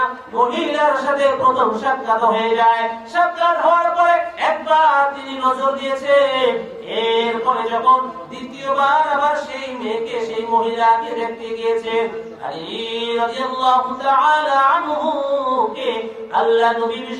মহিলার সাথে প্রথম সাক্ষাৎ হয়ে যায়। সাক্ষাৎ হওয়ার পরে একবার তিনি নজর দিয়েছেন, এরপরে যখন দ্বিতীয়বার আবার সেই মেয়েকে, সেই মহিলাকে দেখতে গিয়েছেন, আলী রাদিয়াল্লাহু তাআলা আনহু কে আল্লাহ নবী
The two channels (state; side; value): identical; both; correlation 1.00